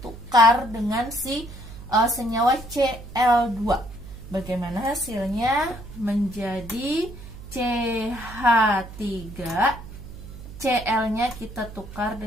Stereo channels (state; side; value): noise; right; hum, 14 dB below the sound